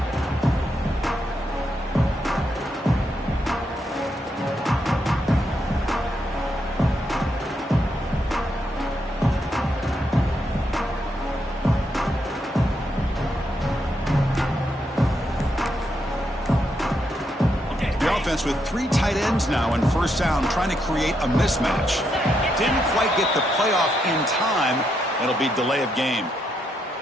With 3 tight ends now in first down, trying to create a mismatch. Didn't quite get the playoff in time. It'll be delay of game.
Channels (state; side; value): normal; both; correlation 0.79